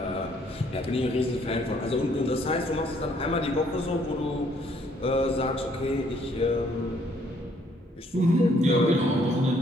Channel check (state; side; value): normal; both; correlation 0.65